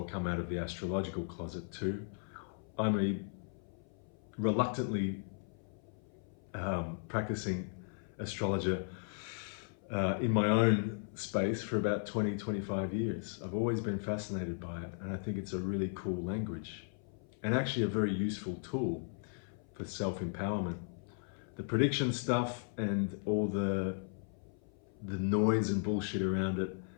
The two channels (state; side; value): silent; right; 53 dB below the other